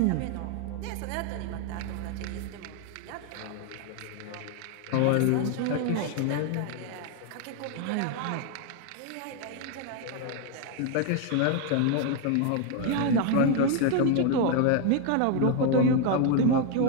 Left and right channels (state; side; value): different; both; correlation 0.01